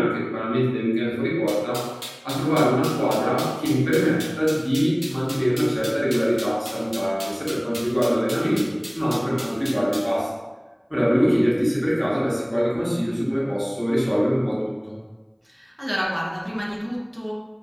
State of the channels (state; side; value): identical; both; correlation 1.00